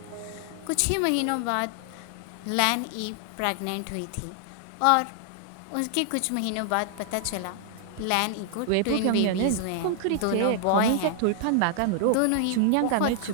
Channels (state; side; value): different; both; correlation 0.00